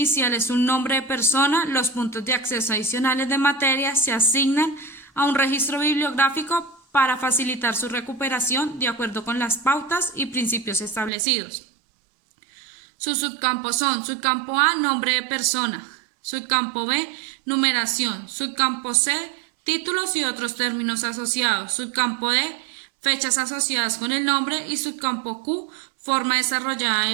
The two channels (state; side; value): drops out; left; at 11.1 s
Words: es un nombre de persona. Los puntos de acceso adicionales de materia se asignan a un registro bibliográfico para facilitar su recuperación de acuerdo con las pautas y principios establecidos. Sus subcampos son: subcampo A, nombre de persona; subcampo B, numeración; subcampo C, títulos y otros términos asociados; subcampo D, fechas asociadas con el nombre; y subcampo Q, forma desarrollada